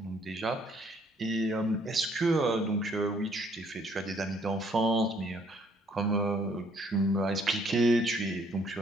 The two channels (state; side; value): normal; both; correlation 0.64